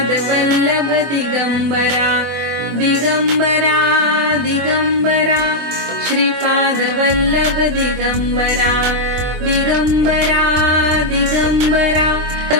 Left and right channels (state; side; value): late; left; 24 ms